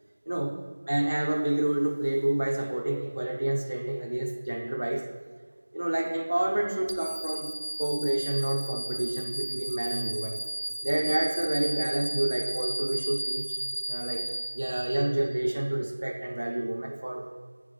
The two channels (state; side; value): inverted; both; correlation -1.00